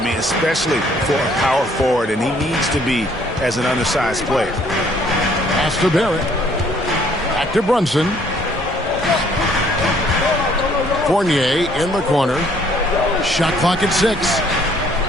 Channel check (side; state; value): both; normal; correlation 0.62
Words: especially for a power forward, and he needs to be as an undersized player. Pass to Barrett. Back to Brunson. Fournier in the corner. Shot clock at 6.